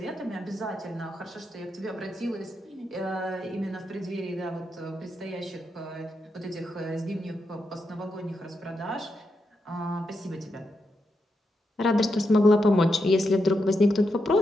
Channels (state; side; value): normal; both; correlation 0.84